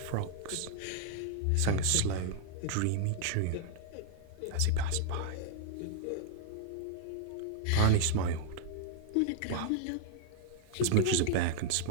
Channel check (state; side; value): different; both; correlation -0.01